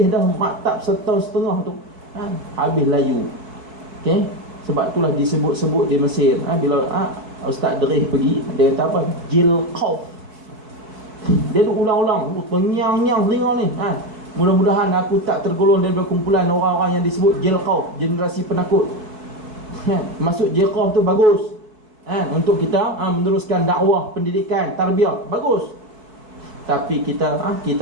dah maktab setahun setengah tu, habis layu. Sebab itulah disebut-sebut di Mesir, bila Ustaz Derih pergi, dia kata apa? Jilqauf. Dia tu ulang-ulang, penyang-nyang telinga ni. Mudah-mudahan aku tak tergolong daripada kumpulan orang-orang yang disebut Jilqauf, generasi penakut. Masuk Jilqauf tu bagus, untuk kita meneruskan dakwah, pendidikan, tarbiyah, bagus. Tapi kita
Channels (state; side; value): late; left; 4.6 ms